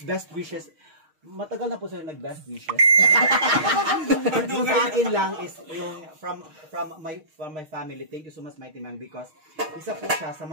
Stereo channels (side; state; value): left; late; 6.5 ms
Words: wishes. Matagal na po sila nag-best wishes. Yung sa akin lang is yung from my family. Thank you so much, Mighty Man, because isa po siya sa